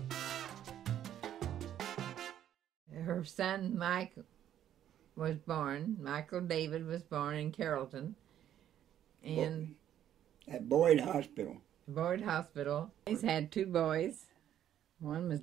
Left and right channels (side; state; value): left; quieter; 10.8 dB